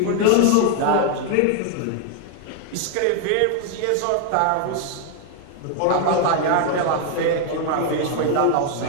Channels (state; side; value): different; both; correlation 0.00